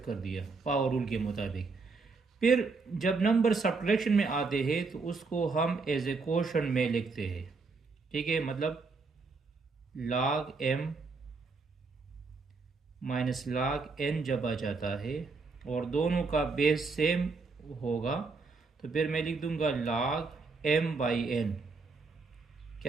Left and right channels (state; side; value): quieter; left; 4.3 dB